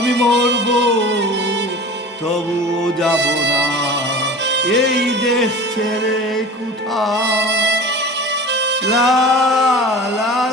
মরব তবুও যাব না এই দেশ ছেড়ে কোথাও। লা লা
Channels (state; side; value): normal; both; correlation 0.37